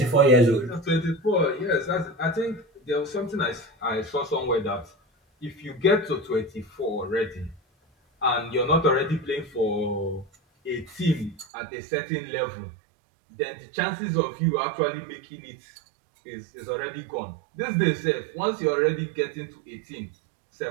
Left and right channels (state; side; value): drops out; left; at 11.5 s